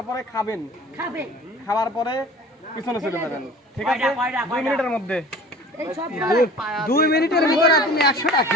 খাবেন, খাওয়ার পরে পিছনে চলে যাবেন। ঠিক আছে, 2 মিনিটের মধ্যে, 2 মিনিটের ভিতরে তুমি 100টা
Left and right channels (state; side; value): normal; both; correlation 0.44